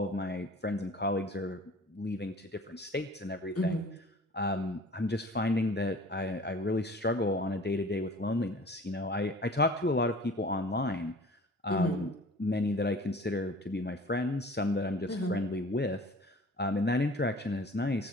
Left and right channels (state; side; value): normal; both; correlation 0.46